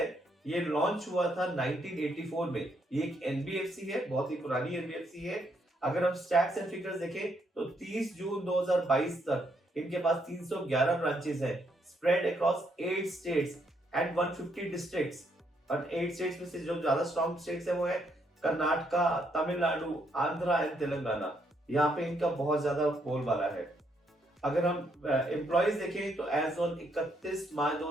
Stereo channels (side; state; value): both; normal; correlation 0.74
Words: ये लॉन्च हुआ था 1984 में। ये एक एनबीएफसी है, बहुत ही पुरानी एनबीएफसी है। अगर हम स्टैट्स एंड फिगर्स देखें तो 30 जून 2022 तक इनके पास 311 ब्रांचेस हैं, spread across 8 states and 150 districts. और 8 स्टेट्स में से जो ज्यादा स्ट्रॉन्ग स्टेट्स है वो है कर्नाटका, तमिलनाडु, आंध्रा एंड तेलंगाना। यहाँ पे इनका बहुत ज्यादा बोलबाला है। अगर हम एम्प्लॉइज देखें तो एज ऑन 31 मार्च